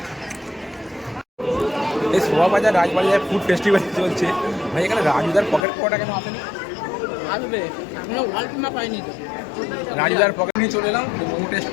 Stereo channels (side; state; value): right; drops out; at 5.7 s